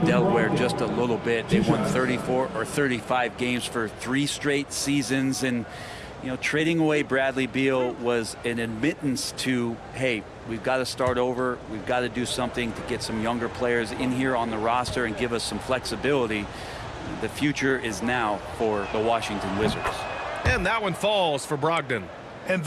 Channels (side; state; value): both; identical; correlation 1.00